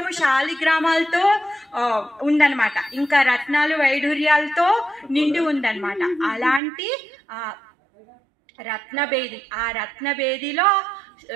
శాలిగ్రామాలతో ఉందన్నమాట. ఇంకా రత్నాలు వైఢూర్యాలతో నిండి ఉందన్నమాట. అలాంటి రత్నబేది, ఆ రత్నబేదిలో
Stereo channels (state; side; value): drops out; left; at 6.6 s